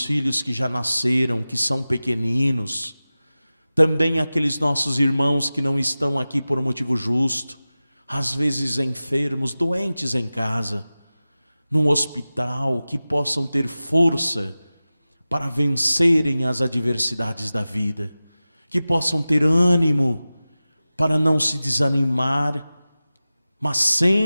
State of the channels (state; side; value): inverted; both; correlation -0.96